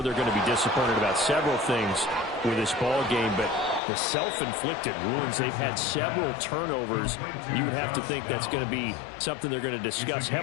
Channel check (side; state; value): right; drops out; at 3.8 s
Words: they're going to be disappointed about several things with this ball game, but the self-inflicted wounds, they've had several turnovers. You would have to think that's going to be something they're going to discuss